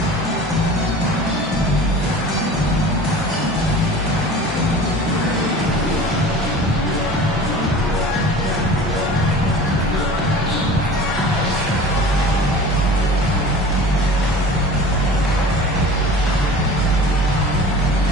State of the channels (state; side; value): normal; both; correlation 0.40